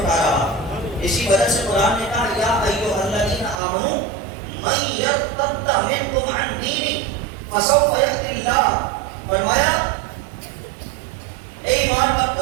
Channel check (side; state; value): left; drops out; at 3.6 s